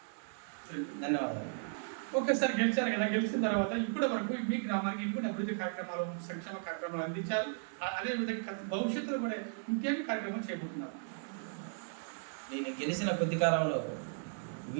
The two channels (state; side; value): silent; left; digital silence